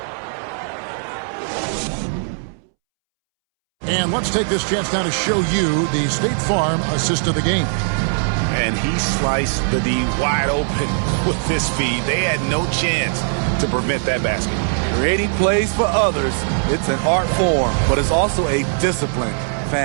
And let's take this chance now to show you the State Farm assist of the game. And he sliced the D wide open with this feed. They had no chance to prevent that basket. Creating plays for others, it's an art form, but it's also a discipline.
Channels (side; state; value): left; silent; 66 dB below the other